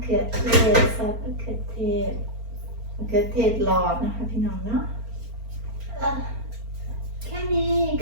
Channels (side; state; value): left; late; 4.4 ms